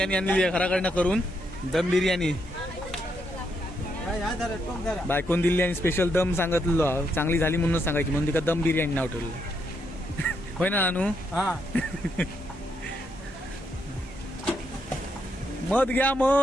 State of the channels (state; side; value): normal; both; correlation 0.78